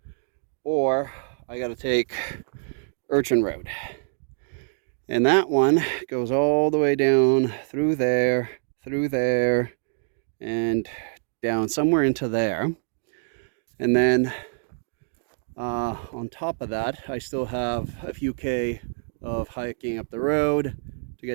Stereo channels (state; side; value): silent; left; digital silence